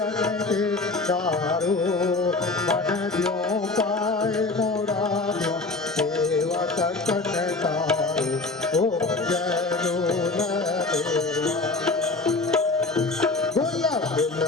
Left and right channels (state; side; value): quieter; right; 3.5 dB